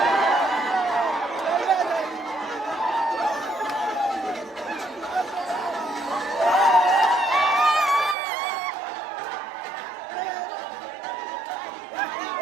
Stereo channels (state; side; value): drops out; left; at 8.2 s